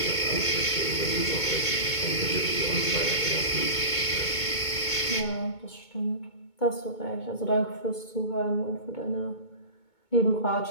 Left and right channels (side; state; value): right; late; 2.2 ms